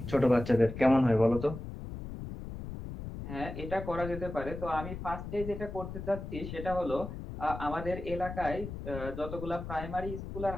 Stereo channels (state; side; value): noise; left; rumble, 8 dB below the sound